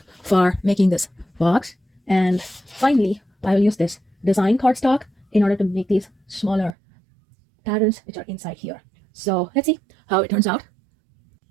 for making this box. And finally, I will use this design cardstock in order to make these smaller patterns which are inside here. So let's see how it turns out.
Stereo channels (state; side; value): drops out; left; at 6.8 s